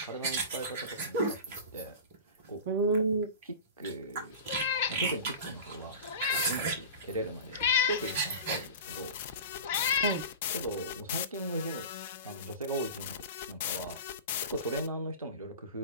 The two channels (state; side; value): inverted; both; correlation -0.31